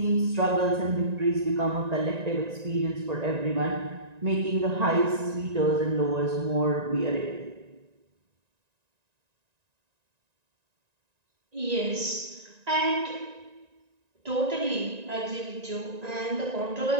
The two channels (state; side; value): late; left; 1.9 ms